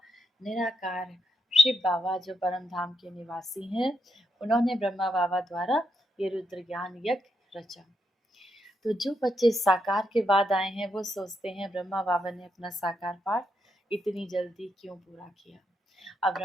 निराकार शिव बाबा जो परम धाम के निवासी हैं, उन्होंने ब्रह्मा बाबा द्वारा ये रुद्र ज्ञान यज्ञ रचा। तो जो बच्चे साकार के बाद आए हैं वो सोचते हैं ब्रह्मा बाबा ने अपना साकार पाठ इतनी जल्दी क्यों पूरा किया। अब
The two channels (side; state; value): both; normal; correlation 0.80